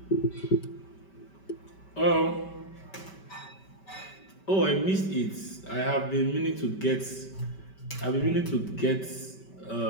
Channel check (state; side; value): late; right; 5.2 ms